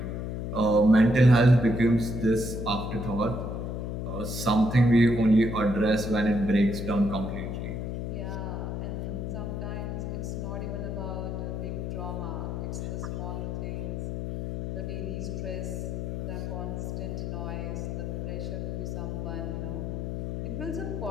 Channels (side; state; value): left; noise; hum, 3 dB below the sound